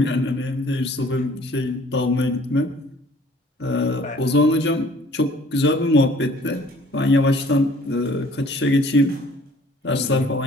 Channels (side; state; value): both; normal; correlation 0.55